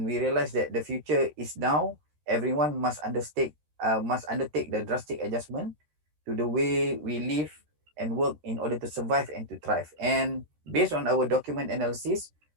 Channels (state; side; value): late; left; 13 ms